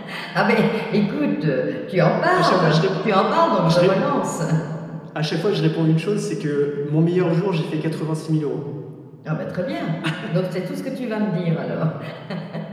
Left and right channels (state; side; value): identical; both; correlation 1.00